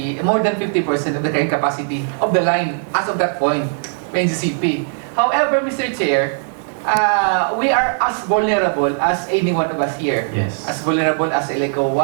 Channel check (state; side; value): silent; left; digital silence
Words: more than 50% of the carrying capacity of the line as of that point, NCCP. However, Mr. Chair, we are as vulnerable as any one of us here. Yes. As vulnerable as Eleco